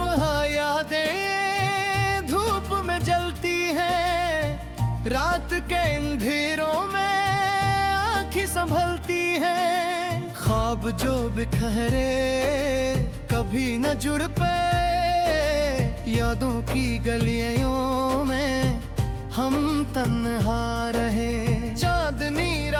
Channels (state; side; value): identical; both; correlation 1.00